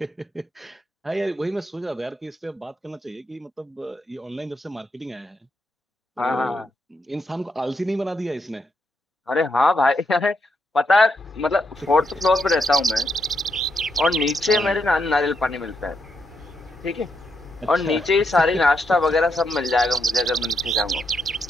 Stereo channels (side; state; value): both; normal; correlation 0.80